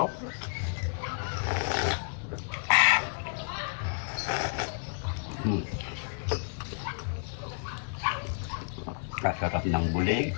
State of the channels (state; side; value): silent; right; 57 dB below the other